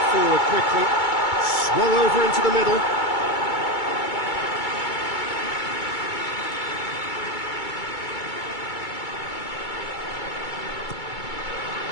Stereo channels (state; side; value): late; right; 2.3 ms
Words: forward quickly. Swung over into the middle.